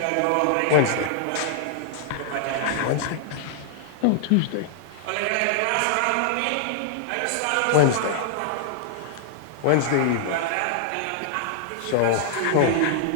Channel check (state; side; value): different; both; correlation -0.01